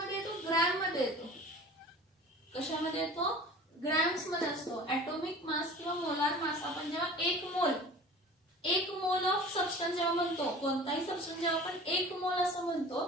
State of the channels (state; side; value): normal; both; correlation 0.41